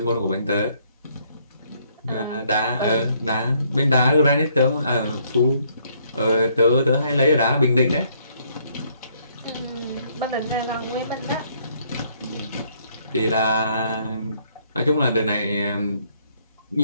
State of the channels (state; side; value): inverted; both; correlation -0.68